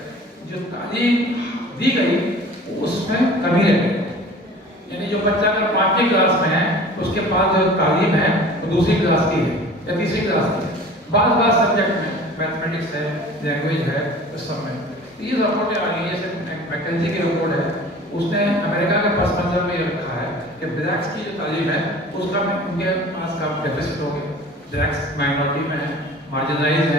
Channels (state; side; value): normal; both; correlation 0.43